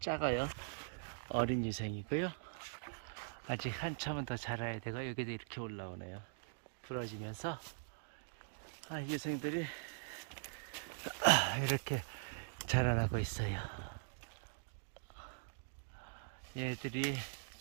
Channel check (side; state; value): left; silent; digital silence